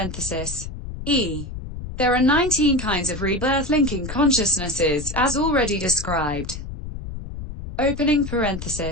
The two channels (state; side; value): noise; left; rumble, 9 dB below the sound